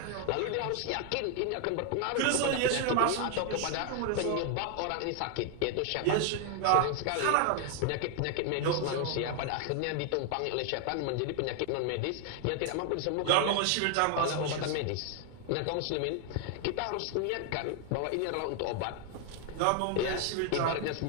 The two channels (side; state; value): both; different; correlation 0.00